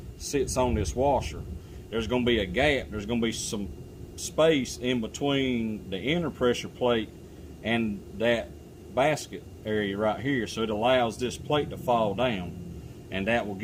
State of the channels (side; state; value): both; identical; correlation 1.00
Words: sits on this washer. There's going to be a gap, there's going to be some space in between the inner pressure plate and that basket area right here, so it allows this plate to fall down, and that will